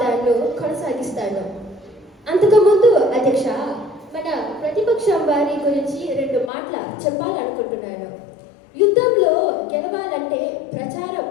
కొనసాగిస్తాను. అంతకుముందు అధ్యక్ష, మన ప్రతిపక్షం వారి గురించి 2 మాటలు చెప్పాలనుకుంటున్నాను. యుద్ధంలో గెలవాలంటే ప్రచారం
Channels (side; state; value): right; drops out; at 6.5 s